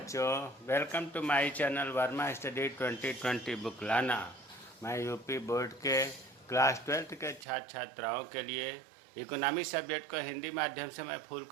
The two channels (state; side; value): drops out; left; at 7.5 s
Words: welcome to my channel Verma study 2020 book लाना। मैं यूपी बोर्ड के क्लास 12th के छात्र छात्राओं के लिए इकोनॉमिक्स सब्जेक्ट को हिंदी माध्यम से मैं फुल